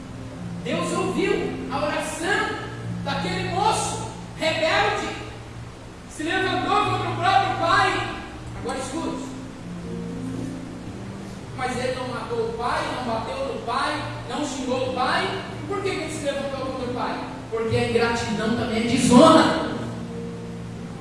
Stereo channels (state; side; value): identical; both; correlation 1.00